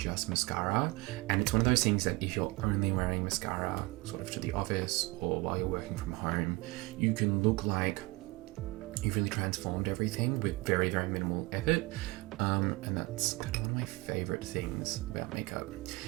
mascara. And it's one of those things that if you're only wearing mascara sort of to the office or while you're working from home, you can look like you've really transformed everything with very, very minimal effort. And that's kind of one of my favorite things about makeup.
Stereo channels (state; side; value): quieter; left; 23.7 dB